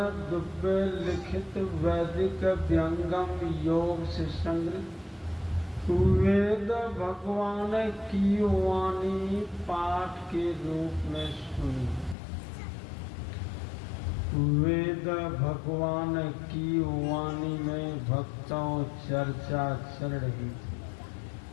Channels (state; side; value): drops out; right; at 12.2 s